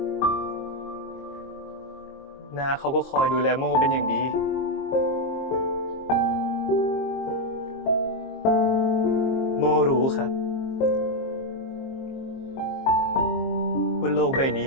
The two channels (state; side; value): late; right; 22 ms